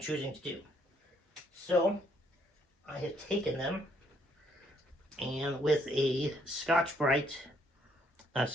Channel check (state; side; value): normal; both; correlation 0.69